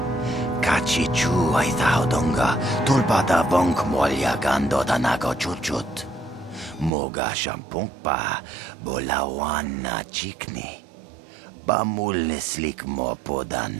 Kachi chu ay thaudonga. Tulpada bonk molya gando danago chuchut. Moga shampong pa bolawan na chikni. Bamulislik mo poda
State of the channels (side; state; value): left; drops out; at 6.9 s